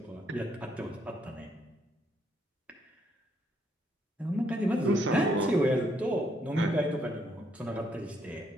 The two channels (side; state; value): both; normal; correlation 0.72